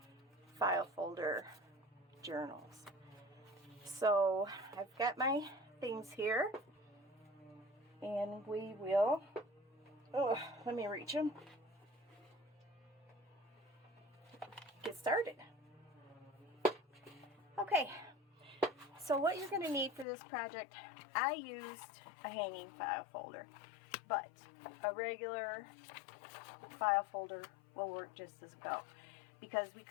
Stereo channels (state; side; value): drops out; right; at 20.1 s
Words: file folder journals. So I've got my things here. And we will, let me reach them, get started. Okay, so what you're going to need for this project, I used a hanging file folder, but a regular file folder will work just as well, because we